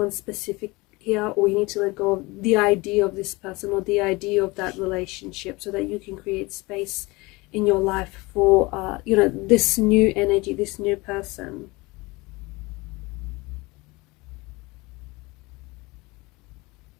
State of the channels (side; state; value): right; quieter; 23.5 dB